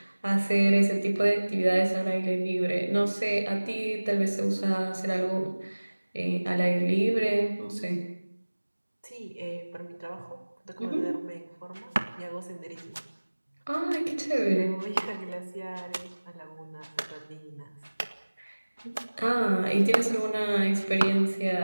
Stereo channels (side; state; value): both; inverted; correlation -1.00